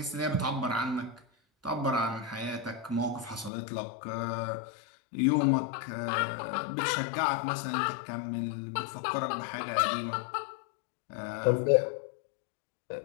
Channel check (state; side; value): drops out; right; at 3.5 s